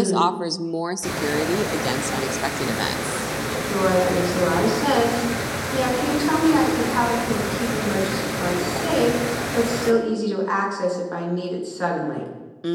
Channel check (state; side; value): identical; both; correlation 1.00